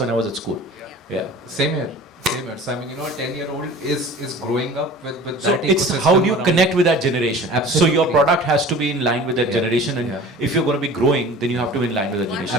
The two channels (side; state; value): both; normal; correlation 0.42